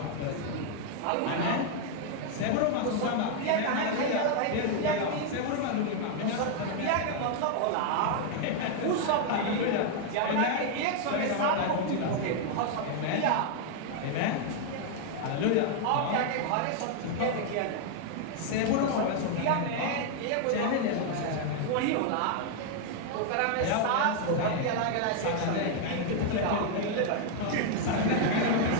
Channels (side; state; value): both; different; correlation 0.00